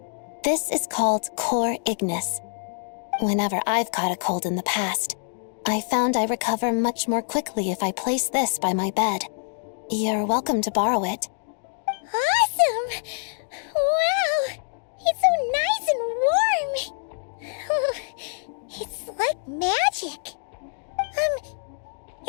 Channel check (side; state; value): right; silent; digital silence